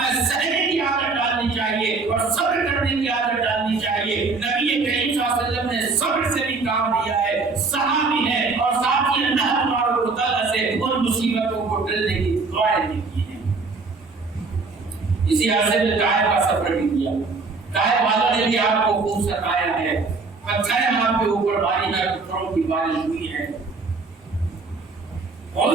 سہنے کی عادت ڈالنی چاہیے اور صبر کرنے کی عادت ڈالنی چاہیے۔ نبی کریم صلی اللہ علیہ وسلم نے صبر سے بھی کام لیا ہے، صحابی ہے اور ساتھ ہی اللہ تبارک و تعالیٰ سے ان مصیبتوں کو ٹلنے کی دعائیں بھی کی ہیں۔ اسی عرصے میں طائف کا سفر بھی کیا، طائف والوں نے بھی آپ کو خوب ستایا ہے، پتھر آپ کے اوپر باری ہے، پتھروں کی بارش ہوئی ہے،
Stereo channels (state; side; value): quieter; left; 4.1 dB